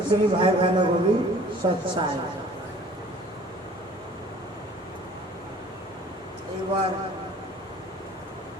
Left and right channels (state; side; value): normal; both; correlation 0.50